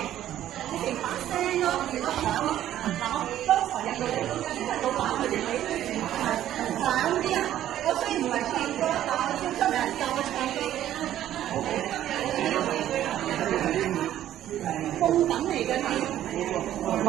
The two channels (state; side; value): quieter; left; 12.2 dB